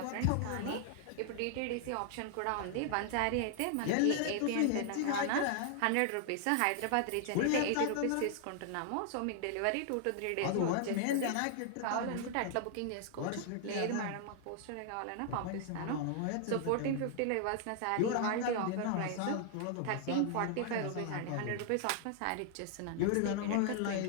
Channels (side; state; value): both; different; correlation 0.00